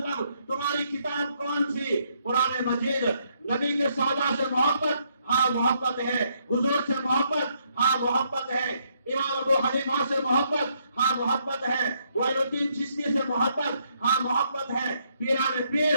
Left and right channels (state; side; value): inverted; both; correlation -0.73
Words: تمہاری کتاب کون سی؟ قرآن مجید. نبی کے صحابہ سے محبت؟ ہاں محبت ہے. حضور سے محبت؟ ہاں محبت ہے. امام ابو حنیفہ سے محبت؟ ہاں محبت ہے. معین الدین چشتی سے محبت؟ ہاں محبت ہے. پیران پیر